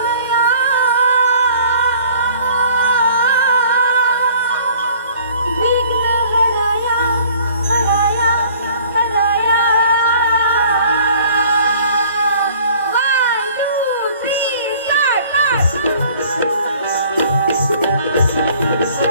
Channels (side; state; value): both; inverted; correlation -0.53